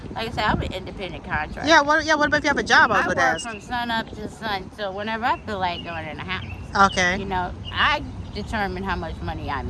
like I said, I'm an independent contractor. Yeah. What about if you have a job? I work from sun up to sun. So whenever I feel like going in the house, okay, I determine how much money I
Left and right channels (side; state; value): both; identical; correlation 1.00